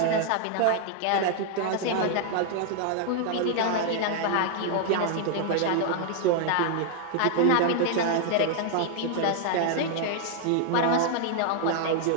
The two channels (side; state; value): both; different; correlation 0.00